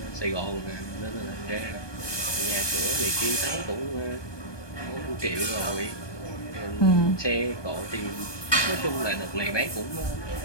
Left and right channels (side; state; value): right; late; 1.2 ms